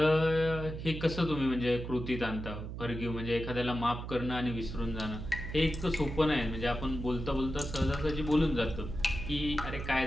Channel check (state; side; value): noise; right; hum, 7 dB below the sound